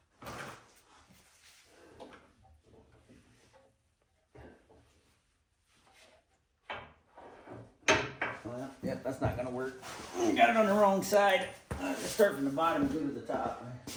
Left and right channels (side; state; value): both; identical; correlation 1.00